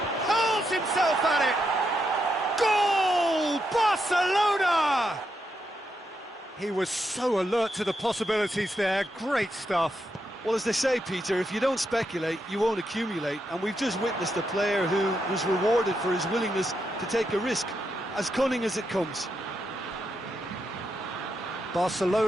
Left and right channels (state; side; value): normal; both; correlation 0.82